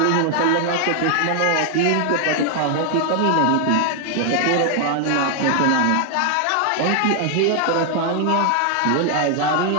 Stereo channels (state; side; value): different; both; correlation 0.00